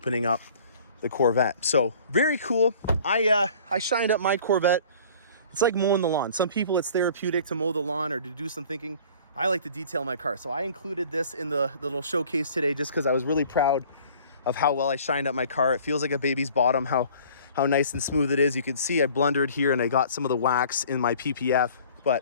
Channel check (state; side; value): inverted; both; correlation -0.49